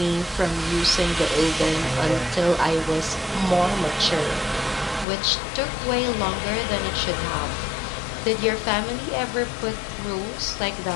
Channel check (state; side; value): drops out; right; at 5.1 s